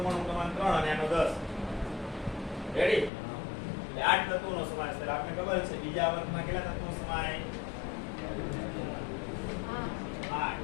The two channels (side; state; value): right; drops out; at 3.1 s